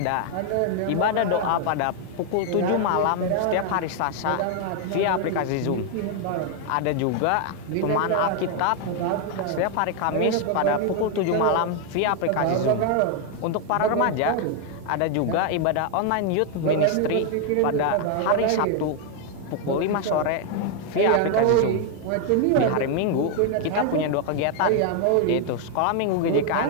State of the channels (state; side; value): different; both; correlation 0.00